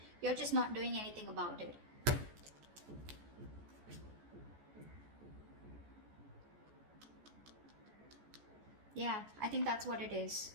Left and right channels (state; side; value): late; left; 14 ms